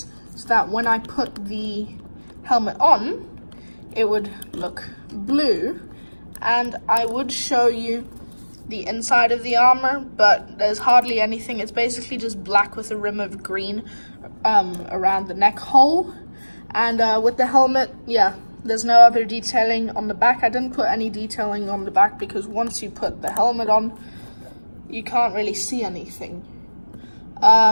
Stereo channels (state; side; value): inverted; both; correlation -1.00